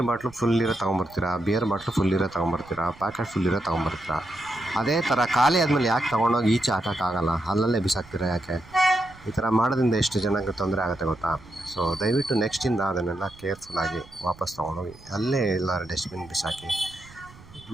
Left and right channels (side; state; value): right; noise; rumble, 22 dB below the sound